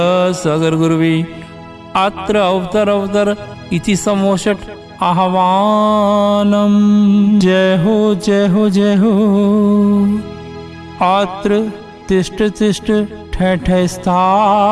गुरुवी अत्र अवतर इति समोषट आह्वानम। जय हो जय हो जय हो। अत्र तिष्ठ तिष्ठ ठय ठय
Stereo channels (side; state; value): both; identical; correlation 1.00